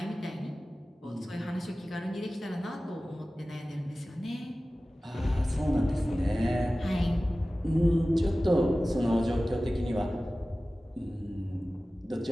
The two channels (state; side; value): normal; both; correlation 0.96